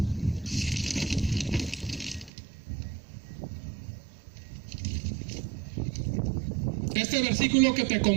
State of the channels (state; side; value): drops out; left; at 2.3 s